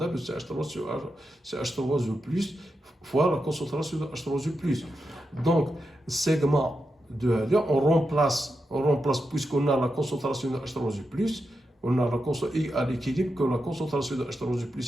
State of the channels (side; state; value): both; normal; correlation 0.87